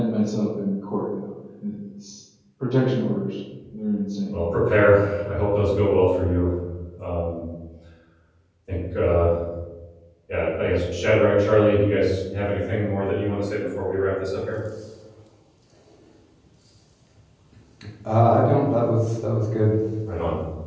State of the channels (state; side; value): identical; both; correlation 1.00